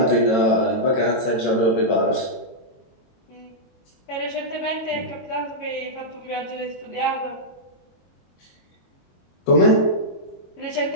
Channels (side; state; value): right; late; 22 ms